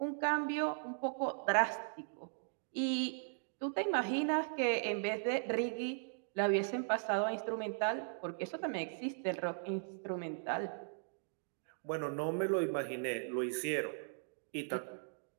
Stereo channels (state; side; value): silent; left; digital silence